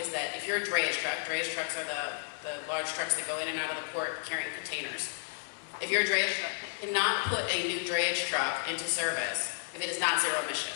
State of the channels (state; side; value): silent; right; 56 dB below the other